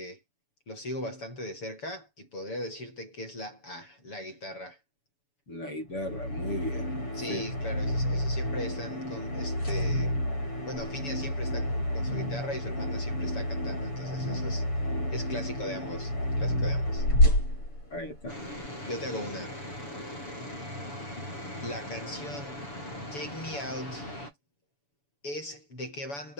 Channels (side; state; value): right; late; 7.0 ms